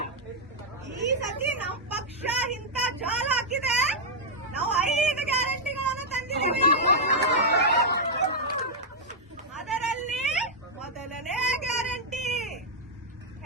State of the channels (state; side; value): normal; both; correlation -0.04